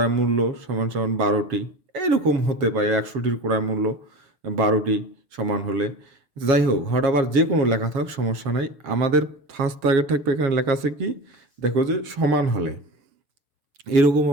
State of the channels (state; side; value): late; left; 6.9 ms